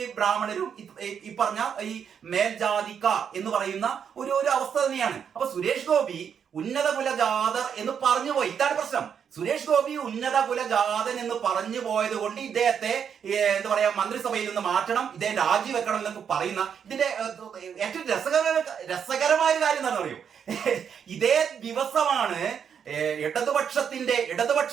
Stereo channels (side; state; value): left; quieter; 7.6 dB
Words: ബ്രാഹ്മണരും ഈ പറഞ്ഞ ഈ മേൽജാതിക്കാർ എന്ന് പറയുന്ന ഒരു അവസ്ഥ തന്നെയാണ്. അപ്പൊ സുരേഷ് ഗോപി ഉന്നത കുലജാതർ എന്ന് പറഞ്ഞു പോയി. ഇതാണ് പ്രശ്നം. സുരേഷ് ഗോപി ഉന്നത കുലജാതൻ എന്ന് പറഞ്ഞു പോയത് കൊണ്ട് ഇദ്ദേഹത്തെ എന്താ പറയാ മന്ത്രിസഭയിൽ നിന്ന് മാറ്റണം, ഇദ്ദേഹം രാജിവെക്കണം എന്നൊക്കെ പറയുന്ന ഇതിന്റെ ഏറ്റവും രസകരമായ ഒരു കാര്യം എന്താണെന്ന് അറിയോ? ഇതേ ദിവസമാണ് ഇടതുപക്ഷത്തിന്റെ